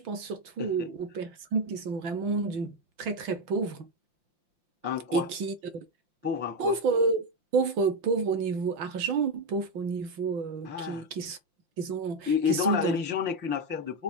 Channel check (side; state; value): left; late; 6.2 ms